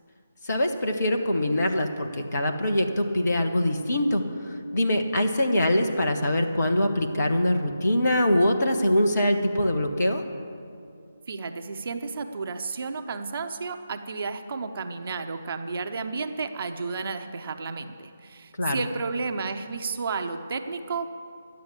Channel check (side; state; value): both; inverted; correlation -0.86